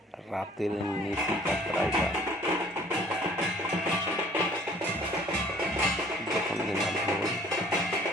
রাতের নিশি যাত্রা এটা। যখন কিনা ঢোল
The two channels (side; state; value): both; normal; correlation 0.55